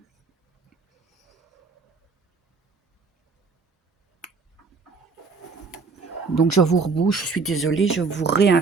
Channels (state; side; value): quieter; left; 4.6 dB